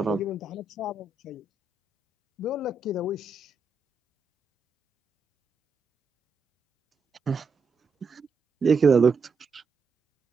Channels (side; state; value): left; quieter; 3.8 dB